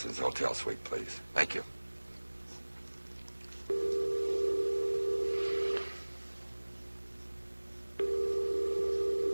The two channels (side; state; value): both; inverted; correlation -1.00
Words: hotel suite, please. Thank you.